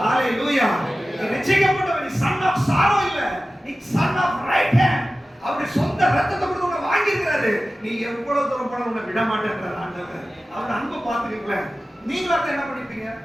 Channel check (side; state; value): both; normal; correlation 0.95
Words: நீ ரட்சிக்கப்பட்டவன். நீ சன் ஆஃப் சாரோ இல்ல, நீ சன் ஆஃப் ரைட் ஹேண்ட். அவருடைய சொந்த ரத்தத்தை கொடுத்து உன்னை வாங்கி இருக்கிறாரு. நீ எவ்வளவு தூரம் போன உன்னை விட மாட்டேங்கிறார் ஆண்டவர். அவர் அன்பை பார்த்துக்கீங்களேன். நீங்களாம் என்ன பண்ணிருப்பீங்க?